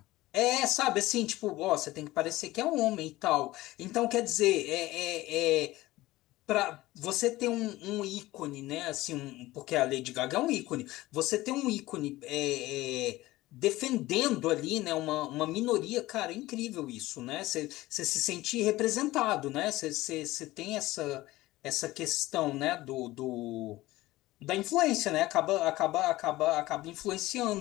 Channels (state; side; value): quieter; right; 17.8 dB